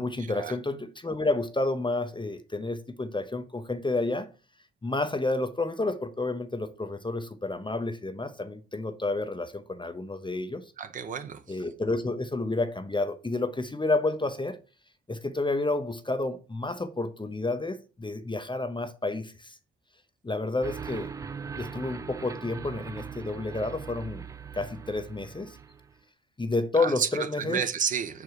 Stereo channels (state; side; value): normal; both; correlation 0.64